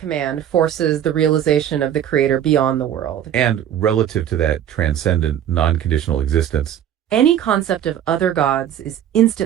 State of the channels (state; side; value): quieter; left; 10.4 dB